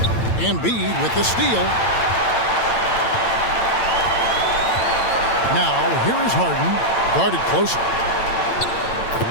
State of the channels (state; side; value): late; right; 8.9 ms